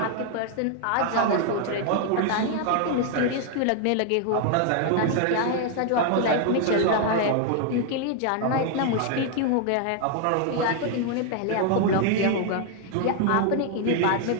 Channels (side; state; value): both; different; correlation 0.00